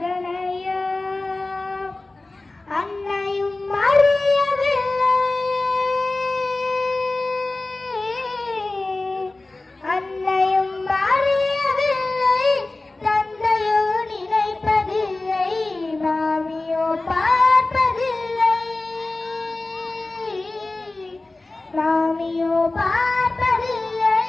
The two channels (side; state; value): right; quieter; 3.1 dB